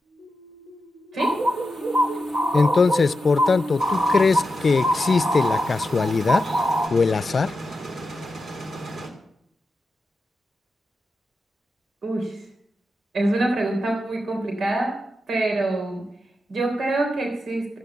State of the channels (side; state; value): both; normal; correlation 0.89